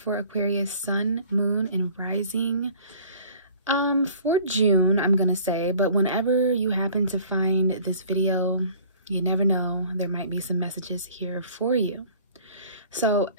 Aquarius sun, moon, and rising for June, I'm going to say, but whenever you happen to find this video, you never know, there might be some messages here for you. So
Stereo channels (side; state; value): both; inverted; correlation -0.50